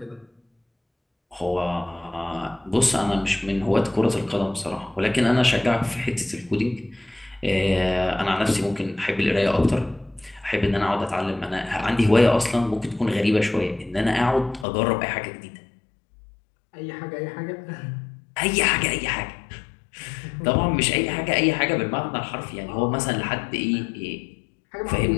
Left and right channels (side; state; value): right; drops out; at 14.7 s